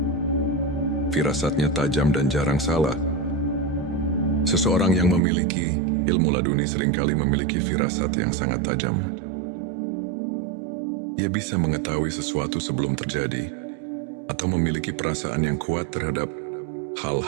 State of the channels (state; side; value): drops out; left; at 5.2 s